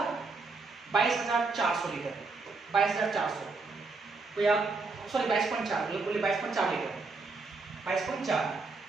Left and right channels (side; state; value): left; quieter; 3.9 dB